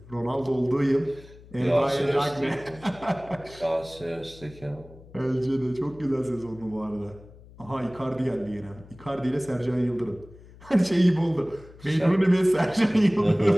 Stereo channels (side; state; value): left; noise; hum, 21 dB below the sound